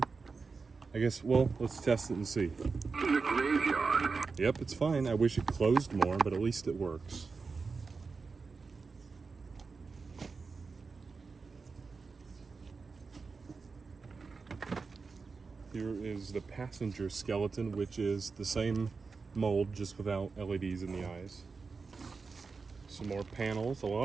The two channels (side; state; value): left; quieter; 4.6 dB